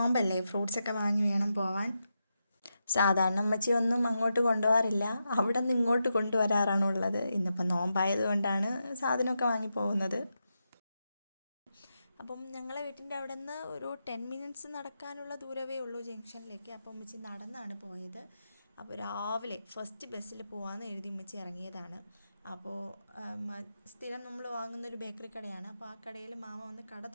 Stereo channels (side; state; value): both; inverted; correlation -0.87